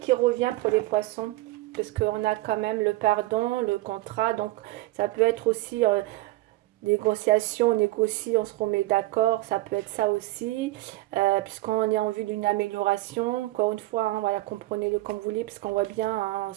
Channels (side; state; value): left; quieter; 18.7 dB